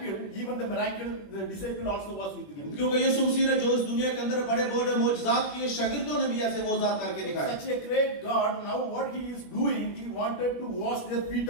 even the miracle, the disciple also was with him. क्योंकि यीशु मसीह ने जो इस दुनिया के अंदर बड़े बड़े मौजज़ात किए, शागिर्दों ने भी ऐसे मौजज़ात करके दिखाए। Such a great God, now what he is doing, he wanted to wash their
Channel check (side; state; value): right; late; 21 ms